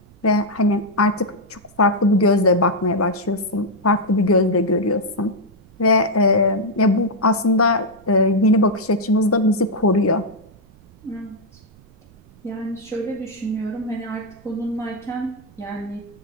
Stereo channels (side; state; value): right; noise; rumble, 27 dB below the sound